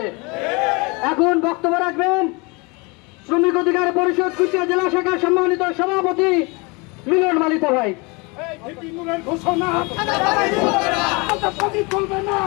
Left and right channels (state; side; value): quieter; right; 28.1 dB